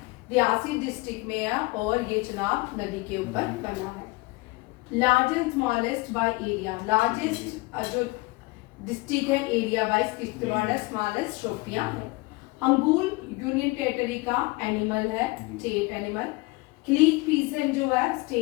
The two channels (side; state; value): right; quieter; 23.9 dB